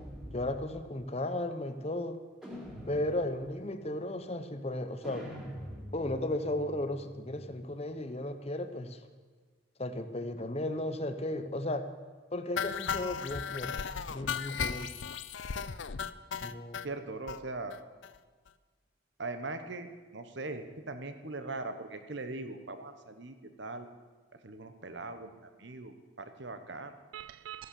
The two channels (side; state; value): both; normal; correlation 0.31